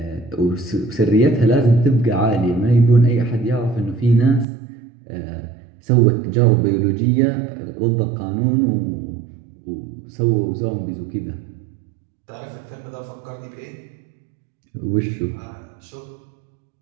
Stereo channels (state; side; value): drops out; left; at 4.5 s